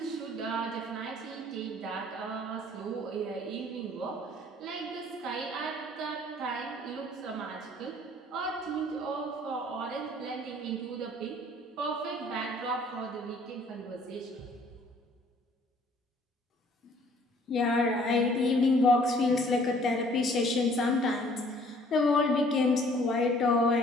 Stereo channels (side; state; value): both; normal; correlation 0.57